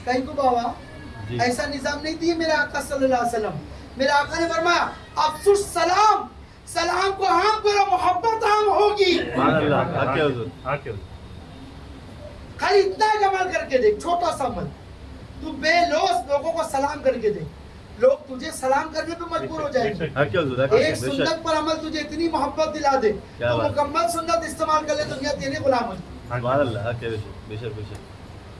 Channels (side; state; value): both; identical; correlation 1.00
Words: کہیں کو بابا جی. ایسا نظام نہیں دیے میرے آقا صلی اللہ علیہ وسلم میرے آقا نے فرمایا افسوس سلام سلام کو عام کرو محبت عام ہوگی سبحان اللہ. حق ہے حضور. خالی اتنا ہی عمل کر کے دیکھ چھوٹا سا عمل تو بے لوث لوگوں کو سلام کر کے دیکھ لوگ تجھے سلام کرنے پہ مجبور ہو جائیں گے حق ہے حضور. حق ہے. ایک بے شک سنت پر عمل تجھے اتنی محبت دلا دے کیا تو بات. مکمل سنت استعمال کر لے دنیا تیرے غلام ہو جائے سبحان اللہ. حق ہے. بے شک بے شک بے شک.